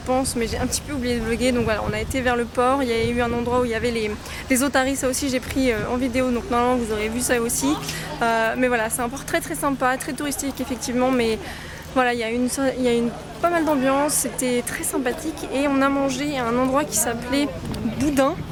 mais j'ai un petit peu oublié de vlogger. Donc voilà, on a été vers le port, il y a eu un endroit où il y avait les otaries, ça aussi j'ai pris en vidéo, donc normalement vous aurez vu ça aussi. Mais voilà, c'est un port très sympa, très touristique effectivement, mais voilà, il y a pas mal d'ambiance, c'était très sympathique et on a mangé à un endroit qui s'appelait Boudin,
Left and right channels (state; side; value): identical; both; correlation 1.00